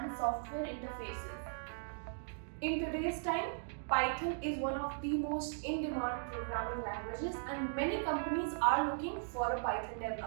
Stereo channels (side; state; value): left; silent; digital silence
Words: software interfaces. In today's time, Python is one of the most in-demand programming languages, and many companies are looking for a Python